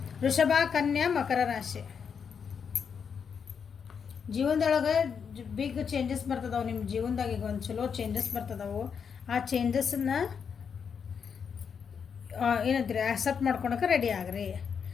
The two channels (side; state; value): right; quieter; 6.7 dB